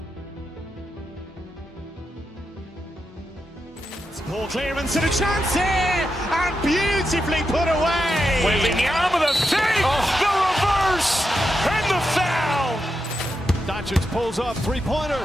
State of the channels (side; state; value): both; normal; correlation 0.87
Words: Ball clearance and a chance here, and beautifully put away. Wembanyama with a save, the reverse, and the foul. Doncic pulls up, three-pointer.